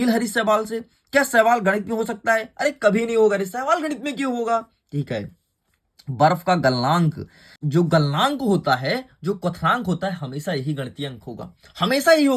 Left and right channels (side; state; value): both; identical; correlation 1.00